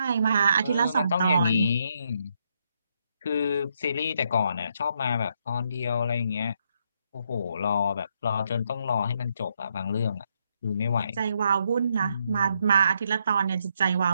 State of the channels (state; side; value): inverted; both; correlation -0.76